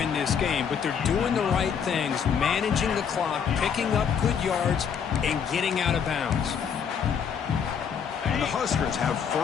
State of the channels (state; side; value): quieter; right; 7.2 dB